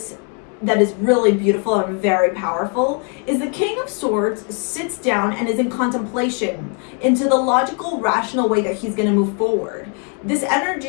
that is really beautiful and very powerful is the King of Swords sits down and is in contemplation into the logical, rational way that he's going to move forward. This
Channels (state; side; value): quieter; right; 39.9 dB